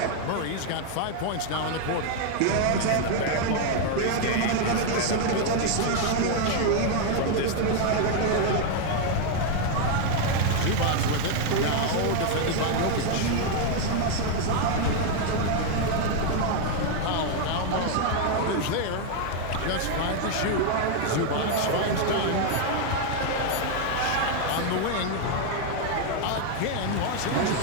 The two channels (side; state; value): both; different; correlation 0.01